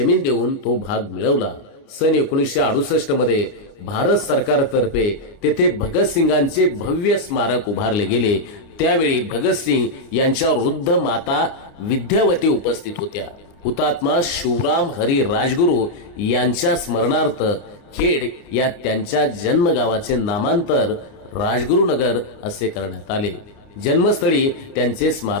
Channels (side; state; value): right; late; 29 ms